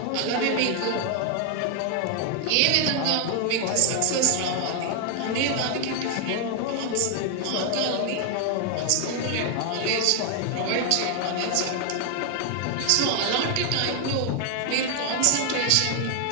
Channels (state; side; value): different; both; correlation 0.00